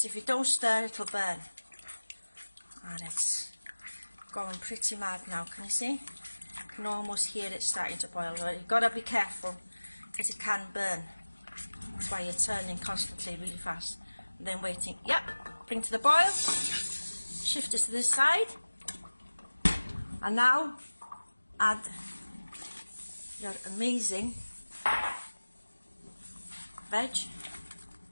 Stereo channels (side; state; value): both; inverted; correlation -1.00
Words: if you don't stir, it'll burn. And it's going pretty mad now, can you see? You can almost hear it starting to boil. But you've got to be careful, because it can burn. That's why you're turning constantly, really fast. And then waiting. Yep, bring to the boil. Shift it to this side. And now add your amazing veg.